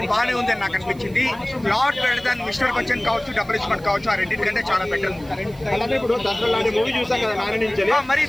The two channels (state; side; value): noise; right; hiss, 26 dB below the sound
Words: బాగానే ఉందని నాకు అనిపించింది. Lot better than mister Bachchan కావచ్చు, డబుల్ ఇస్మెంట్ కావచ్చు, ఆ రెండింటికంటే చాలా బెటర్. ఇప్పుడు దసరా మూవీ చూసాం కదా నాని నుంచి. మరి